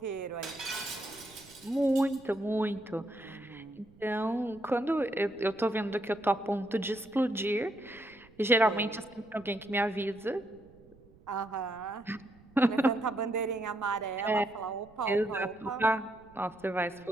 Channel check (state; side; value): noise; right; rumble, 26 dB below the sound